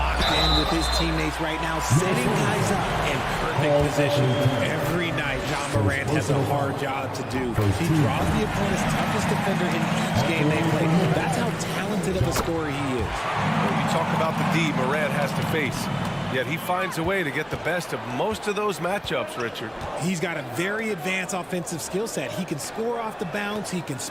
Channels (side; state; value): both; identical; correlation 1.00